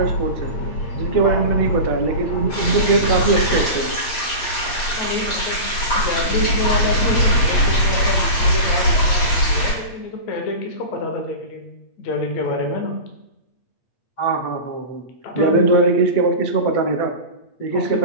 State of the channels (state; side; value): late; right; 8.5 ms